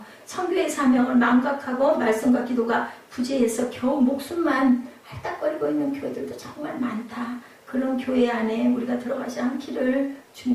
선교의 사명을 망각하고 말씀과 기도가 부재해서 겨우 목숨만 할딱거리고 있는 교회들도 정말 많다. 그런 교회 안에 우리가 들어가지 않기를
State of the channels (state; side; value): identical; both; correlation 1.00